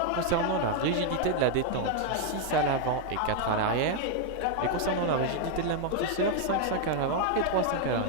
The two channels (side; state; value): both; different; correlation 0.00